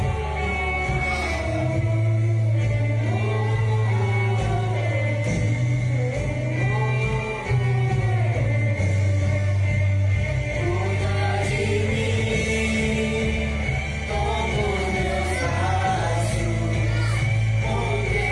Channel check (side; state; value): both; identical; correlation 1.00